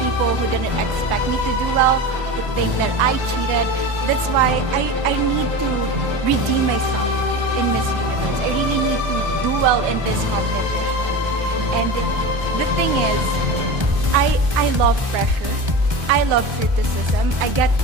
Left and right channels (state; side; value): late; left; 1.3 ms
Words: who didn't expect me to do well, who think that I cheated. That's why I need to redeem myself in Miss Universe. I really need to do well in this competition. And the thing is, I love pressure. I love criticism. I get